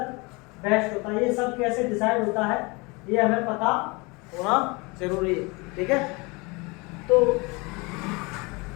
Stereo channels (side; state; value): right; quieter; 26.9 dB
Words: वेस्ट होता है, ये सब कैसे डिसाइड होता है ये हमें पता होना जरूरी है, ठीक है। तो